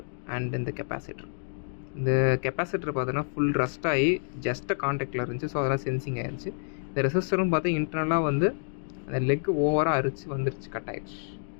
அண்ட் இந்த கெப்பாசிட்டர். இந்த கெப்பாசிட்டர் பார்த்தீங்கன்னா ஃபுல் ரஸ்ட் ஆகி ஜஸ்ட்டு கான்டாக்டில் இருந்துச்சு. ஸோ அதெல்லாம் சென்சிங் ஆகிருச்சு. இந்த ரெசிஸ்டரும் பார்த்தா இன்டர்னலாக வந்து அந்த லெக்கு ஓவராக அரிச்சு வந்துருச்சு, கட் ஆகிடுச்சு.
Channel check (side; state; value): right; silent; digital silence